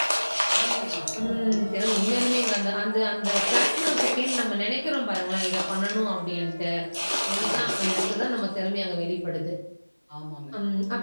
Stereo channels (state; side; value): inverted; both; correlation -1.00